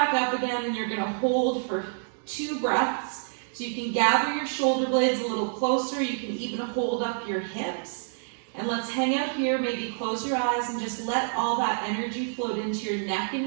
up again, and you're going to hold for 2 breaths. So you can gather your shoulder blades a little closer. You can even hold up your hips. And let's hang out here, maybe close your eyes and just let all that energy float into your neck and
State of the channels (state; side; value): silent; left; digital silence